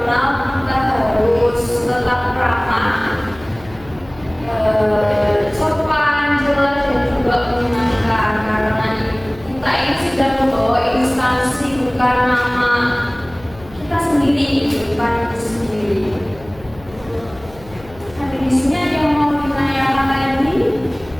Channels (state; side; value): noise; left; hum, 21 dB below the sound